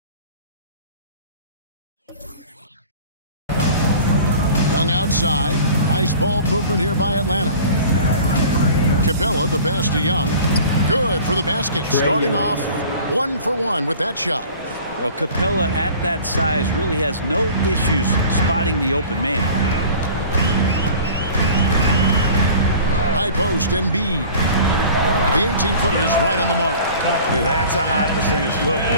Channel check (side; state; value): both; inverted; correlation -0.43